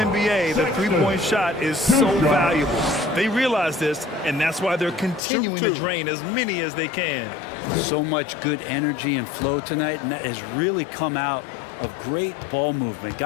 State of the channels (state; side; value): drops out; right; at 5.2 s